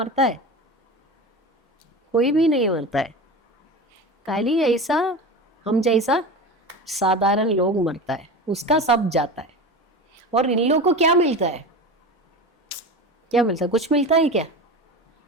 है, कोई भी नहीं मरता है। खाली ऐसा हम जैसा साधारण लोग मरता है, उसका सब जाता है। और इन लोगों को क्या मिलता है, क्या मिलता है? कुछ मिलता है क्या?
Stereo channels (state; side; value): normal; both; correlation 0.28